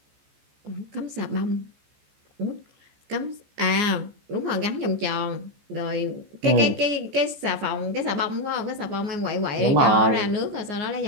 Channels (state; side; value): late; left; 14 ms